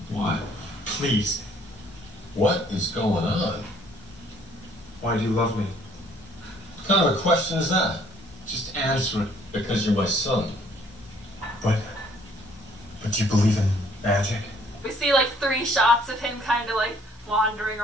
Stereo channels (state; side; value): normal; both; correlation 0.61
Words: What? Please. What is going on? Why do you love me? What kind of a question is that? Just answer it. Because you're my son. But you believe in magic? We see like 3 shots of him kind of like wandering